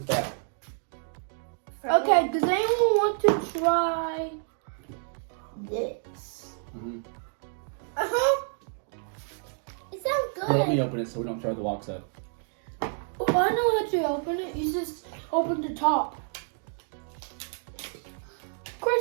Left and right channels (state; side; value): silent; left; 59 dB below the other